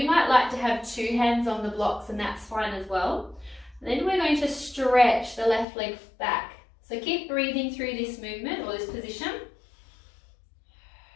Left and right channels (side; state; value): right; drops out; at 5.7 s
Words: might like to have two hands on the blocks, and that's fine as well. Then we're going to stretch the left leg back. So keep breathing through this movement or this position.